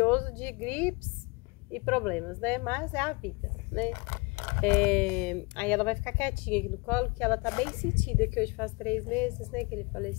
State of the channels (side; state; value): right; quieter; 28.0 dB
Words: de gripes e problemas, né? Mas é a vida, né? Aí ela vai ficar quietinha aqui no colo, que ela tá bem sentida, que hoje faz 3 meses, né, que ele